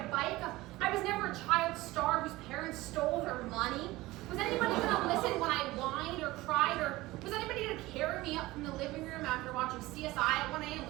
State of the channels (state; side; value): quieter; left; 19.0 dB